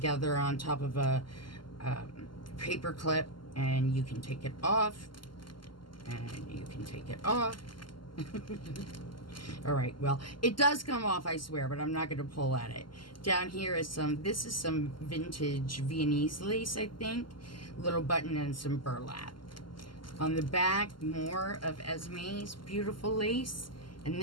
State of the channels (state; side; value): late; right; 0.72 ms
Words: on top of a paper clip, and you can take it off, and you can take it off. All right, well, it does come off, I swear, but I'm not going to pull at it. Down here is this is some vintage Viennese lace, I think. Little button and some burlap. On the back, more of Esme's beautiful lace. And